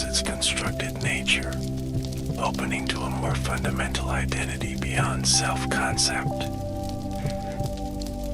its constructed nature, opening to a more fundamental identity beyond self-concept.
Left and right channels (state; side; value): identical; both; correlation 1.00